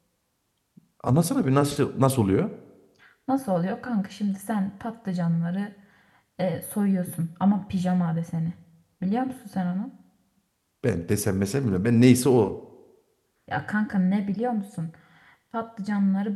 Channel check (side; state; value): both; identical; correlation 1.00